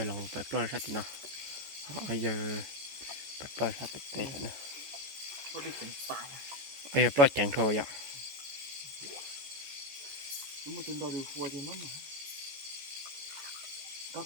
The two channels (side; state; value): left; late; 14 ms